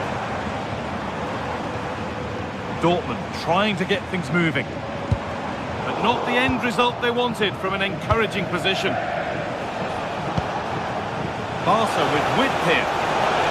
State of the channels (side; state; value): both; identical; correlation 1.00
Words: Dortmund trying to get things moving, but not the end result they wanted from an encouraging position. Barca with width here.